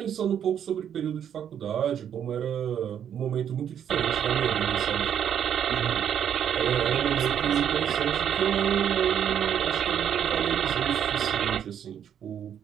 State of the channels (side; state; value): left; quieter; 9.1 dB